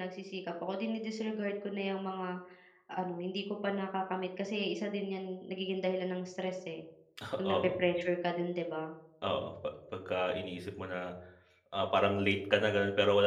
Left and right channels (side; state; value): both; identical; correlation 1.00